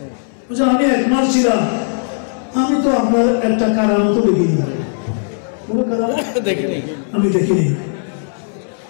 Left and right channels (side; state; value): right; silent; 68 dB below the other